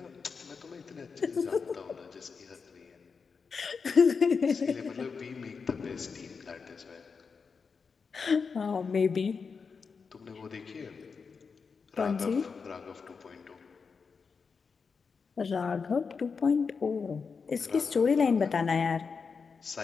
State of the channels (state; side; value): quieter; right; 5.3 dB